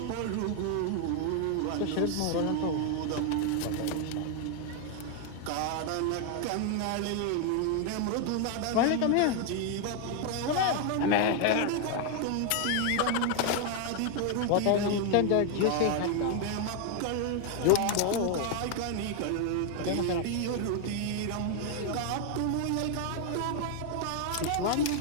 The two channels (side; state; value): both; different; correlation 0.01